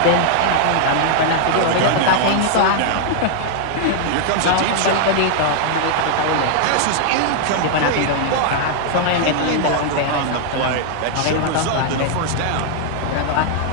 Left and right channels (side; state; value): both; different; correlation -0.01